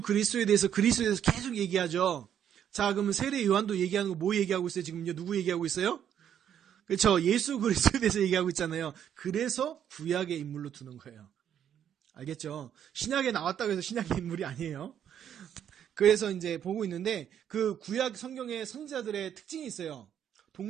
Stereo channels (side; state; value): left; quieter; 9.4 dB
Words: 그리스도에 대해서 계속 얘기하죠. 자, 그러면 세례 요한도 얘기하는 거 뭐 얘기하고 있어요? 지금요 누구 얘기하고 있어요? 그렇죠. 예수 그리스도에 대해서 얘기하고 있잖아요. 그래서 구약의 인물로 두는 거예요. 알겠죠? 신약에 나왔다고 해서 신약의 인물이 아니에요. 그래서 이제 보고 있는데 그 구약 성경의 선지자들의 특징이 있어요.